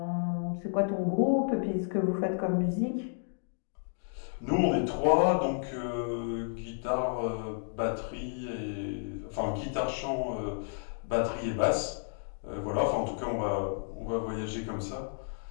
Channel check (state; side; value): silent; right; digital silence